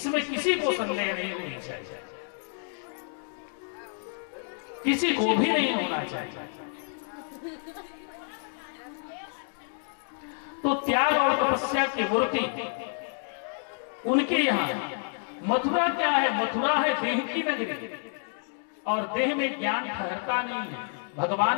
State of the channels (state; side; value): silent; right; 59 dB below the other